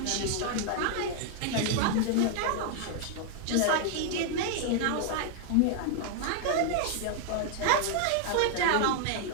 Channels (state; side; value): different; both; correlation 0.00